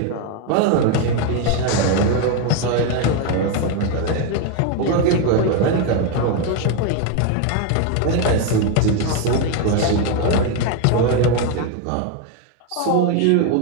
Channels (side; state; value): both; different; correlation 0.01